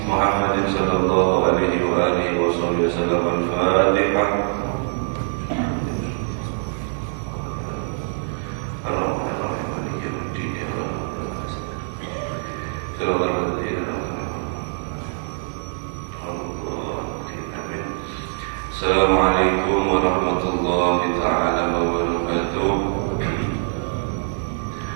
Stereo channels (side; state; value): left; silent; 63 dB below the other